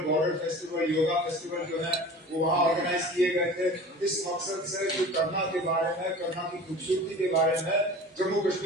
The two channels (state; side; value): normal; both; correlation 0.39